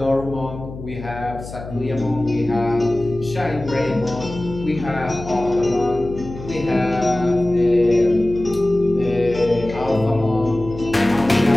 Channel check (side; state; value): left; noise; hum, 12 dB below the sound